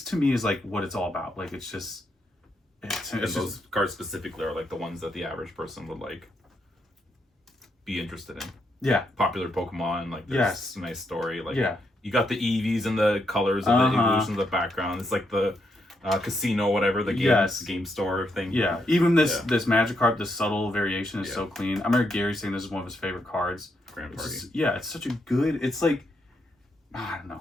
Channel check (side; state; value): both; normal; correlation 0.79